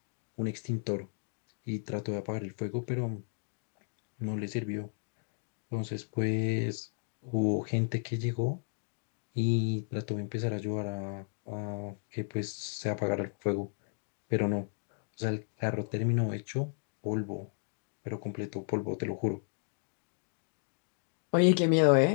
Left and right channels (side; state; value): right; silent; digital silence